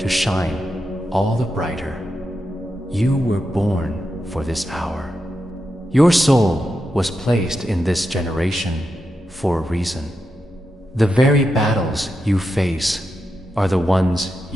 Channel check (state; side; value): normal; both; correlation 0.87